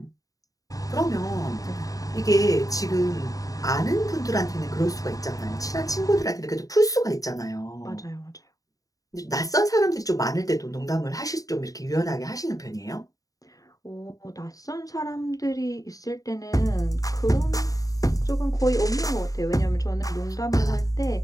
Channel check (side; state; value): right; late; 0.17 ms